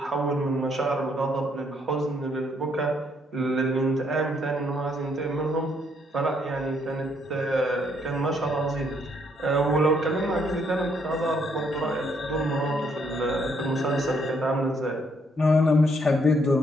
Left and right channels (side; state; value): both; normal; correlation 0.71